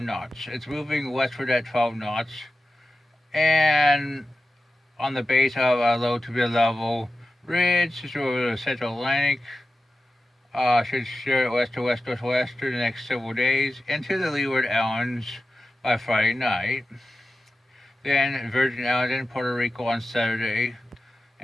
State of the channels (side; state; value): both; normal; correlation 0.94